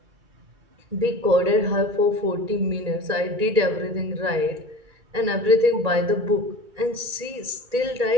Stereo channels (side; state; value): left; late; 2.3 ms